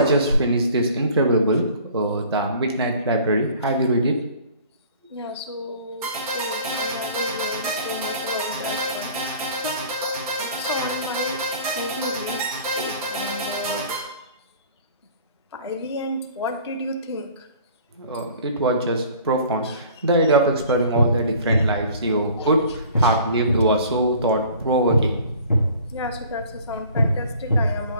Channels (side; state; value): both; inverted; correlation -0.49